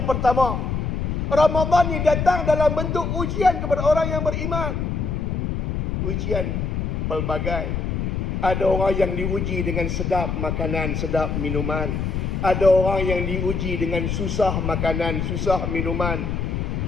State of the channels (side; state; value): left; noise; rumble, 1 dB below the sound